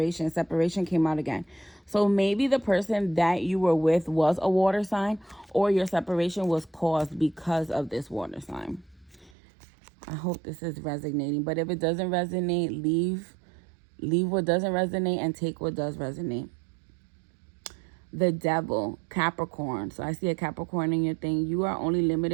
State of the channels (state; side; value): drops out; left; at 9.3 s